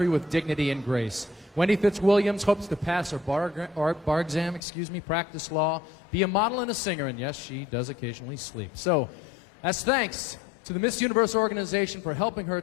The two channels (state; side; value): drops out; right; at 4.6 s